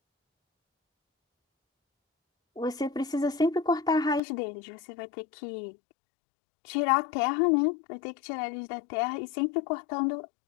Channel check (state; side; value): drops out; right; at 4.2 s